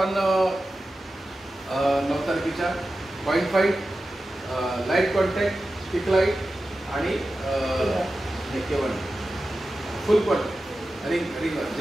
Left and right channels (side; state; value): both; normal; correlation 0.93